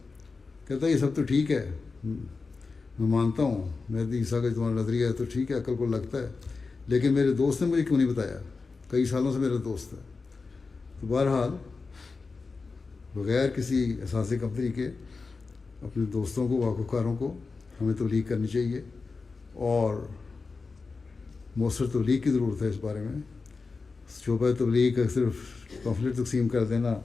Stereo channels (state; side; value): quieter; right; 4.3 dB